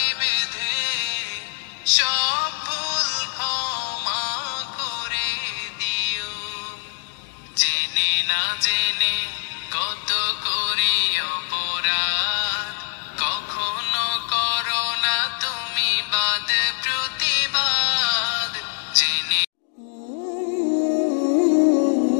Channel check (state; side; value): silent; right; digital silence